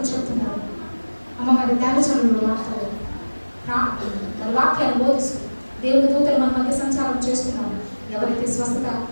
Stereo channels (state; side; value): inverted; both; correlation -1.00